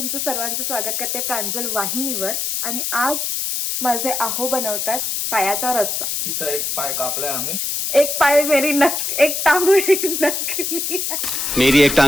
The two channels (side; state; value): left; noise; hiss, 1 dB below the sound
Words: सर्वांचं स्वागत करते प्रांजल वाहिनीवर. आणि आज माझे आहो बनवतात पायाचा रस्सा. तिचा एक पाय कापलाय आम्ही. एक पाय मेरी एक टांग मेरी नकली है. मेरी एक